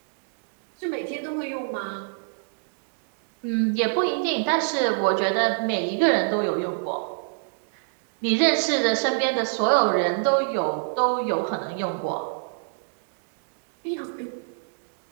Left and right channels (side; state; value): left; silent; digital silence